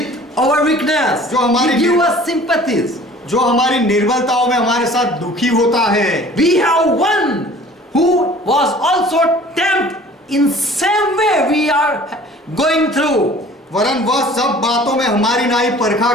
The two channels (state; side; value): normal; both; correlation 0.48